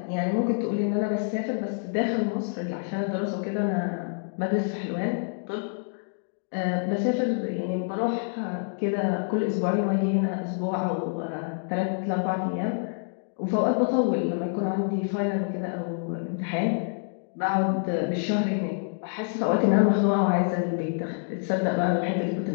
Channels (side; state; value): right; silent; digital silence